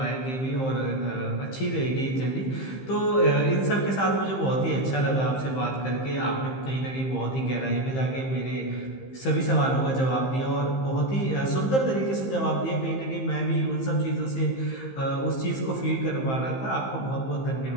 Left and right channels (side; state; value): right; late; 15 ms